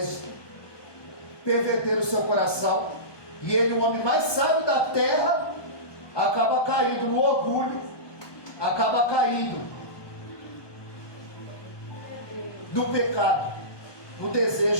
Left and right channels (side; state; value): right; late; 1.2 ms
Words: perverteram o seu coração. E ele, o homem mais sábio da terra, acaba caindo no orgulho, acaba caindo no pecado, no